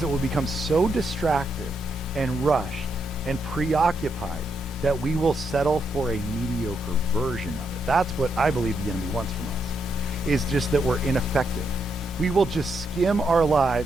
we'll become so distracted and rushed and preoccupied that we will settle for a mediocre version of it. That's what I believe the enemy wants from us, is just that we're ineffective. We will just skim our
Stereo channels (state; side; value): normal; both; correlation 0.80